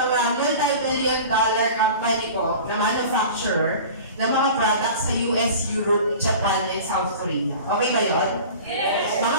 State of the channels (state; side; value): inverted; both; correlation -0.38